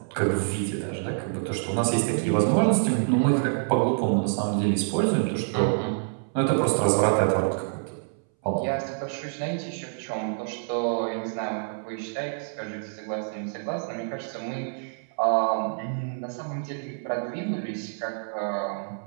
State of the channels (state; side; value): silent; left; 60 dB below the other